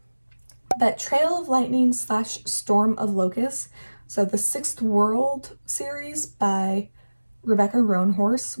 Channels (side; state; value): both; inverted; correlation -1.00